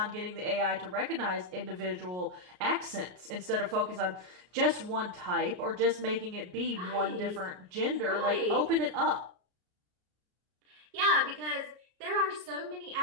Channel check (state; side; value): late; left; 33 ms